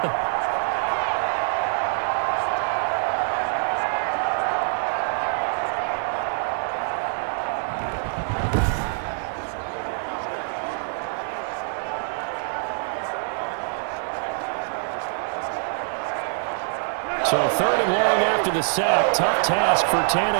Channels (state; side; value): silent; left; 62 dB below the other